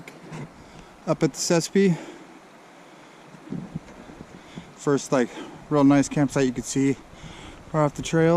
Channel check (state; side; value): identical; both; correlation 1.00